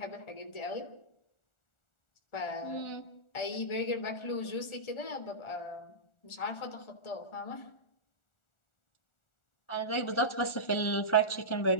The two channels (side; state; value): right; late; 1.4 ms